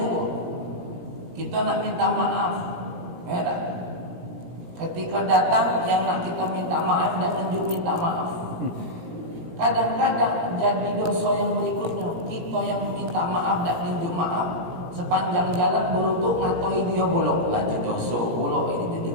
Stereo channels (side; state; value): left; late; 18 ms